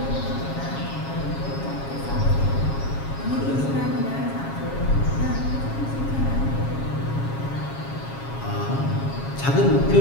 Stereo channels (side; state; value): right; late; 7.3 ms